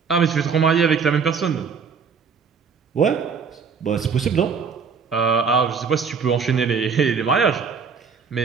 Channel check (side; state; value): left; quieter; 5.8 dB